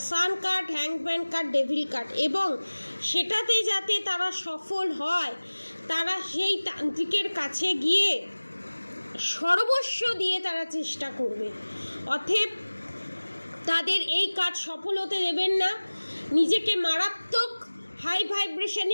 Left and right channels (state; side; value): inverted; both; correlation -1.00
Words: সান কার্ড, হ্যাংম্যান কার্ড, ডেভিল কার্ড। এবং সেটাতে যাতে তারা সফল হয়, তারা সেই তান্ত্রিকের কাছে গিয়ে সর্বস্ব দিয়ে তারা চেষ্টা করবে। অতএব তাদের এই কাজ সফল হতে দেবেন না, নিজেকে মারাত্মক হাই